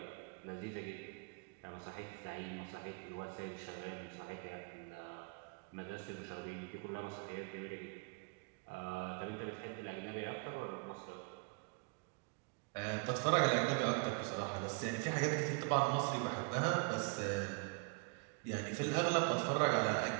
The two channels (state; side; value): quieter; left; 34.3 dB